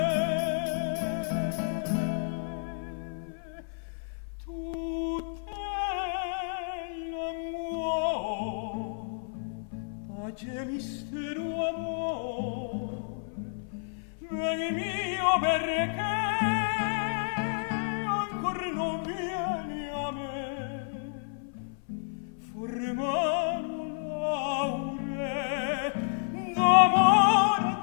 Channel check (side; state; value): right; silent; 56 dB below the other